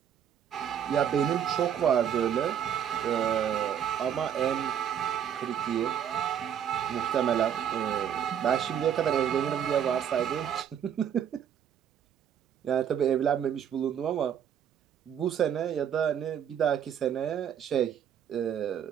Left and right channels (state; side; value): quieter; left; 8.9 dB